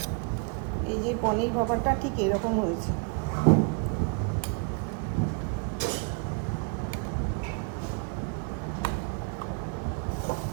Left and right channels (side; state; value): left; quieter; 35.4 dB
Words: এই যে পনির ভাপাটা ঠিক এরকম হয়েছে।